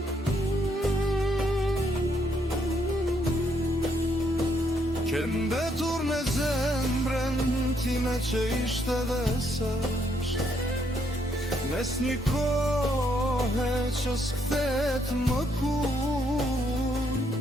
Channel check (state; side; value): normal; both; correlation 0.73